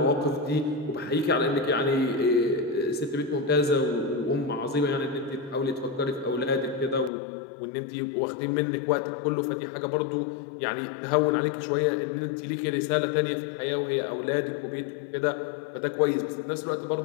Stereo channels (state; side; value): drops out; right; at 7.1 s